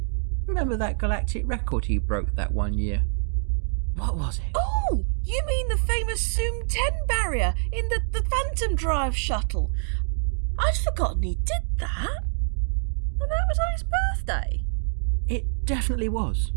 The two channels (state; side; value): silent; left; digital silence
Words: Remember that galactic record he broke that one year? What was it? Oh, you mean the famous Zoom 10 barrier in the Phantom Drive shuttle? I'd forgotten he did that. And that was on his birthday. It definitely was.